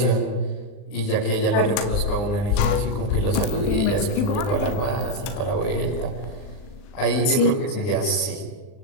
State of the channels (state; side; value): late; right; 39 ms